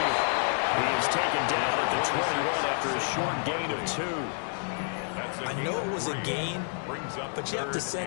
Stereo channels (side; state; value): right; silent; 58 dB below the other